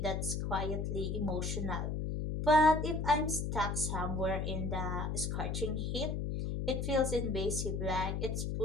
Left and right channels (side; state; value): left; noise; hum, 1 dB below the sound